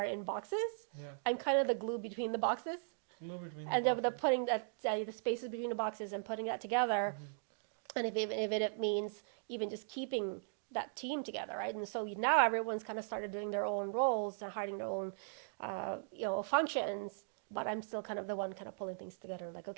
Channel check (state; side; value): silent; left; digital silence